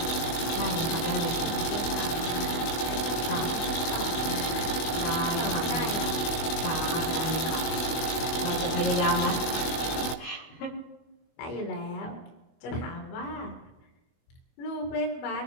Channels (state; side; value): late; right; 24 ms